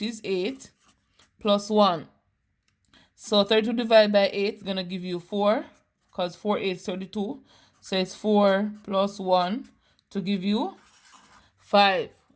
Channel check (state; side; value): identical; both; correlation 1.00